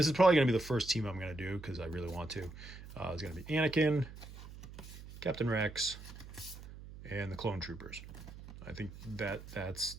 is probably going to be the first team I'm going to do because I really want to. It's going to be Anakin, Captain Rex, and the Clone Troopers. I think that's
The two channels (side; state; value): right; noise; hum, 14 dB below the sound